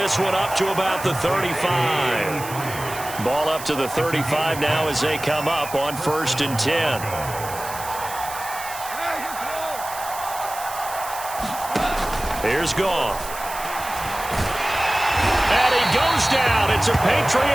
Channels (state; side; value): noise; right; hiss, 12 dB below the sound